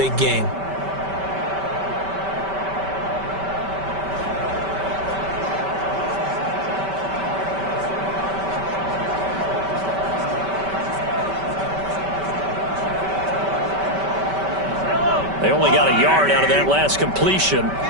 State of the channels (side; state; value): left; late; 5.2 ms